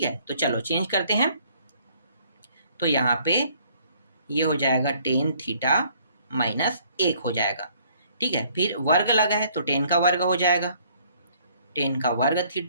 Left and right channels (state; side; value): inverted; both; correlation -0.61